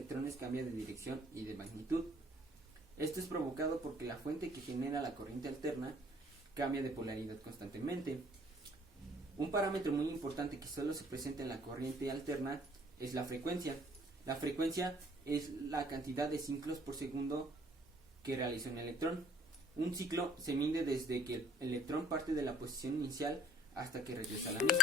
cambia de dirección y de magnitud. Esto es provocado porque la fuente que genera la corriente alterna cambia de polaridad constantemente. Un parámetro muy importante que solo se presenta en la corriente alterna es la frecuencia. La frecuencia es la cantidad de ciclos por segundo que realiza un electrón. Un ciclo se mide desde que el electrón parte de la posición inicial hasta que regresa a la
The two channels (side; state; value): both; normal; correlation 0.53